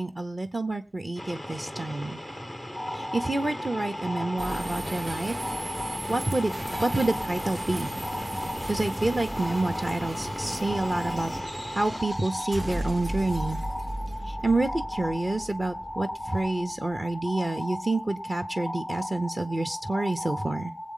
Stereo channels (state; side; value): normal; both; correlation 0.97